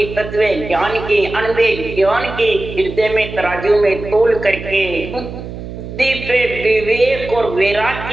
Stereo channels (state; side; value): noise; right; hum, 10 dB below the sound